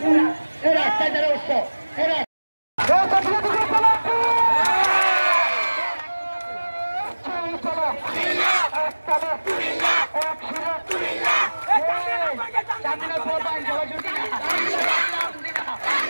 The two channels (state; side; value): inverted; both; correlation -1.00